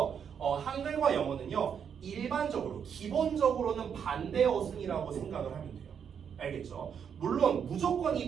한글과 영어는요 일반적으로 기본적으로는 반대 어순이라고 생각을 하면 돼요. 알겠죠? 물론 무조건 이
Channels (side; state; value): left; quieter; 7.6 dB